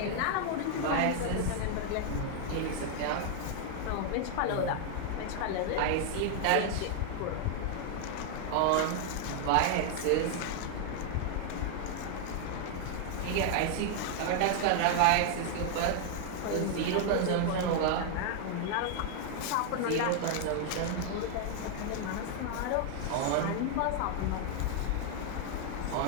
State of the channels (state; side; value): different; both; correlation 0.00